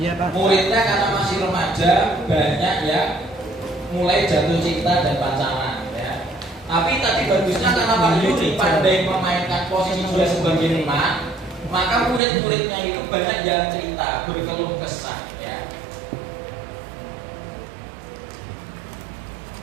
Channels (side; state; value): left; drops out; at 12.2 s